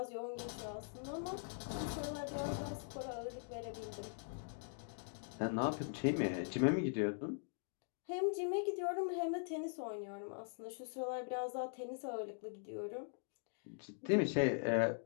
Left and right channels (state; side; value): silent; right; digital silence